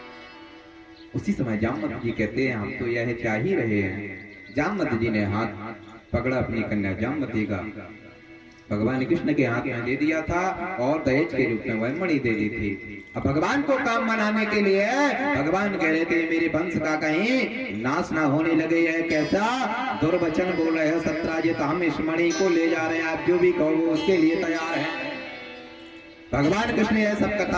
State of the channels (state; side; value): identical; both; correlation 1.00